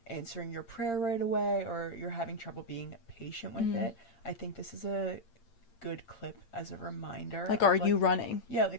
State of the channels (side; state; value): right; late; 8.7 ms